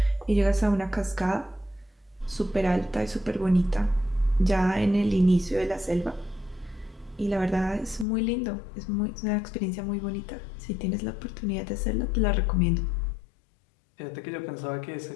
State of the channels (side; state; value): right; drops out; at 8.1 s